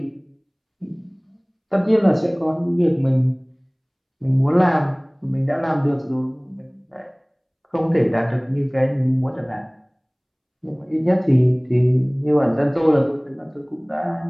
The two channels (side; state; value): both; identical; correlation 1.00